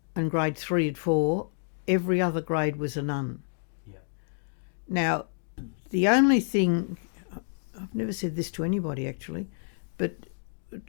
and grade 3 and 4. Every other grade was a nun. Yeah. Now, the only thing, I've never said this to anybody actually, but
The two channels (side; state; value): right; silent; digital silence